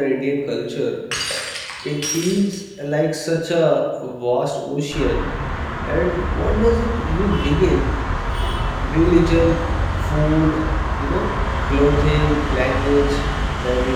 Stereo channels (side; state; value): both; identical; correlation 1.00